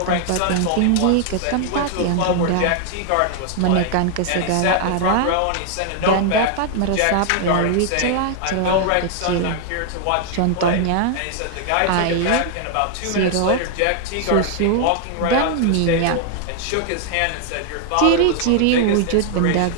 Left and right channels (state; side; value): different; both; correlation 0.00